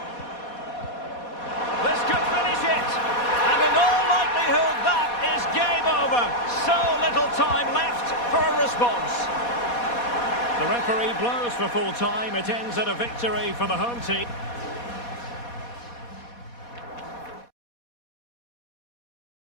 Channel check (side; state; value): right; late; 4.2 ms